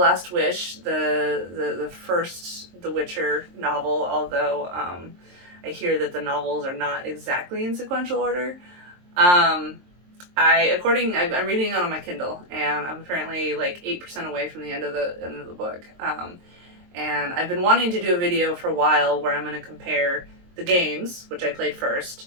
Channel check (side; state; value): left; late; 23 ms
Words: Wish, the first The Witcher novel, although I hear that the novels are not exactly in sequential order. I'm reading it on my Kindle, and I'm apparently like 8% away from the end of the book. And I've been wanting to do a video for a while where I'm going to compare the games, which I played first,